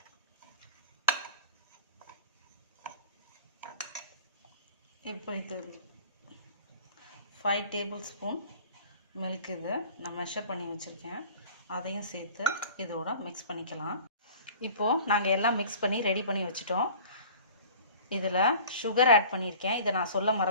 இப்போ இது 5 டேபிள் ஸ்பூன் மில்க் இது நான் மெஷர் பண்ணி வச்சுருக்கேன். அதையும் சேர்த்து இதோட மிக்ஸ் பண்ணிக்கலாம். இப்போது நாங்கள் எல்லாம் மிக்ஸ் பண்ணி ரெடி பண்ணி வச்சுட்டோம். இதில் சுகர் ஆட் பண்ணியிருக்கேன். இதை நான் சொல்ல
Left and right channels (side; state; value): both; inverted; correlation -0.44